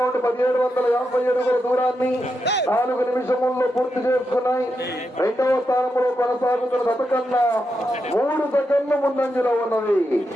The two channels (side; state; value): both; normal; correlation 0.85